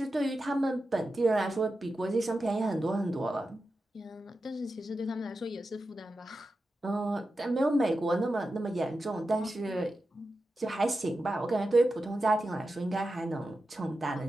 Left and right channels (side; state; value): both; normal; correlation 0.91